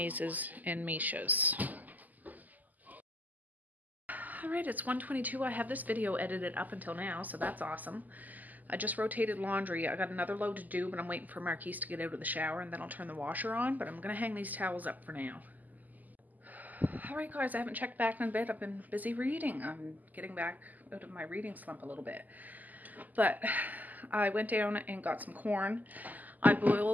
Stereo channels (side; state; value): left; late; 0.082 ms